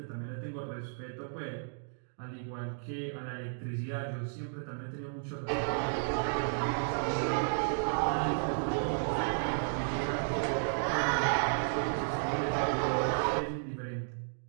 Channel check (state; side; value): silent; left; digital silence